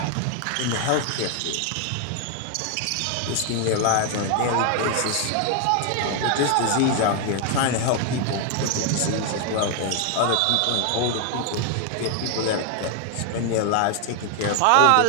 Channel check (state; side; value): different; both; correlation 0.00